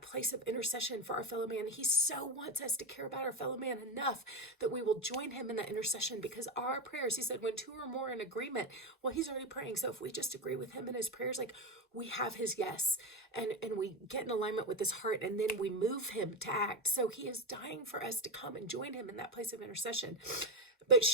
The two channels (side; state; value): both; normal; correlation 0.13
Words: place of intercession for our fellow man. He so wants us to care about our fellow man enough that we will join him in that intercession, because our prayers, he said, when two or more in agreement, well, he's already praying. So if we just agree with him in his prayers, like we have his yes, and we get in alignment with his heart, and then we move him to act. So he is dying for us to come and join him in that place of intercession. But